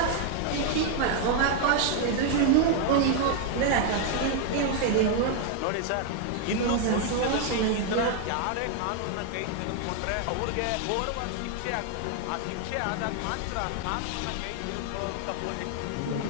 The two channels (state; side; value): different; both; correlation 0.00